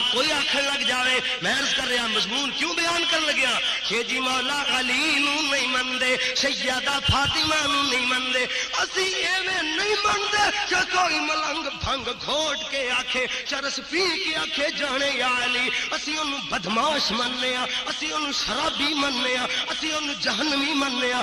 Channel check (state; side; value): identical; both; correlation 1.00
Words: کوئی آخر لگ جاوے میں عرض کر رہا مضمون کیوں بیان کر لگیا کہ جی مولا علی نو نہیں مندے سیدہ فاطمہ نو نہیں مندے اسی ایویں نہیں مندے کہ کوئی ملنگ بھنگ گھوٹ کے آکھے چرس پی کے آکھے جانے یا علی اسی انہوں بدماش مننے ہاں اسی انہوں شرابی مننے ہاں اسی انہوں جہنمی مننے ہاں